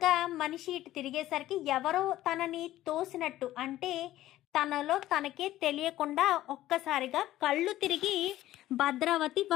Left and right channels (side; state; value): right; quieter; 14.6 dB